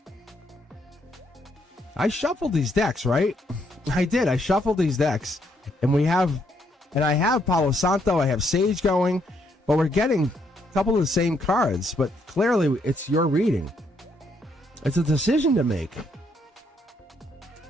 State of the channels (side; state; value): both; normal; correlation 0.73